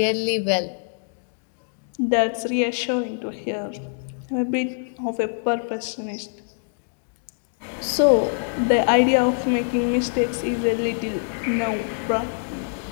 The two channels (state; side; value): silent; right; digital silence